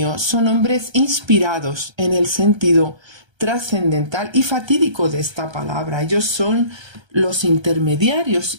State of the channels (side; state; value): left; late; 1.3 ms